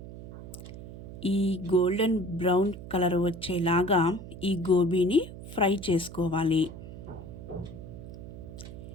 ఈ గోల్డెన్ బ్రౌన్ కలర్ వచ్చేలాగా ఈ గోబీని ఫ్రై చేసుకోవాలి.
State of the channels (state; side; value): noise; right; hum, 12 dB below the sound